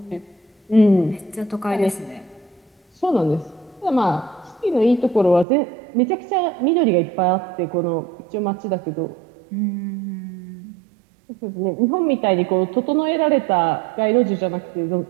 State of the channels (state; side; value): drops out; left; at 5.5 s